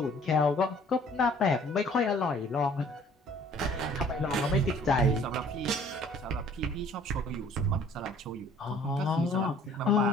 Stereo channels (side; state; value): both; normal; correlation 0.54